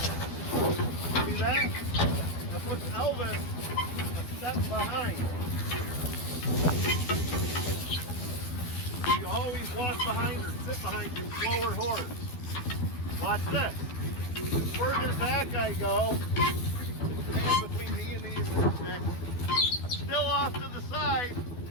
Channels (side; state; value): right; late; 12 ms